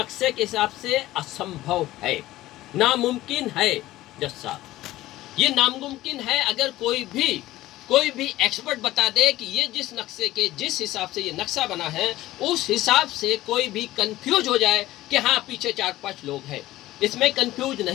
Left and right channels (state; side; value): quieter; right; 16.2 dB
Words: के हिसाब से असंभव है, नामुमकिन है। जज साहब, ये नामुमकिन है। अगर कोई भी एक्सपर्ट बता दे कि ये जिस हिसाब से ये नक्शा बना है उस हिसाब से कोई भी कंफ्यूज हो जाए कि हाँ पीछे 4-5 लोग हैं, इसमें कंफ्यूज